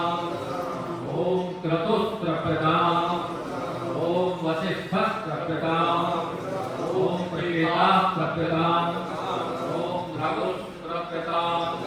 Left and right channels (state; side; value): identical; both; correlation 1.00